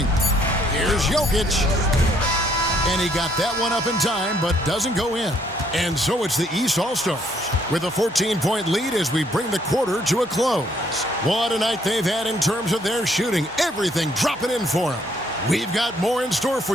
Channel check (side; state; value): both; normal; correlation 0.67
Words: Here's Jokic. And he got that one up in time, but doesn't go in. And so it's the East All-Stars with a 14-point lead as we bring the quarter to a close. What a night they've had in terms of their shooting. Everything dropping in for them. We've got more in store